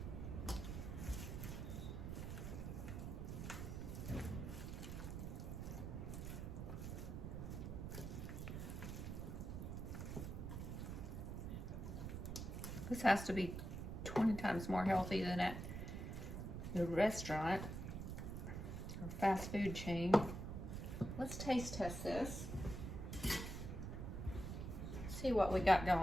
This has to be 20 times more healthy than at the restaurant or fast food chain. Let's taste test this. See what we got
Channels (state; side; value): noise; right; rumble, 5 dB below the sound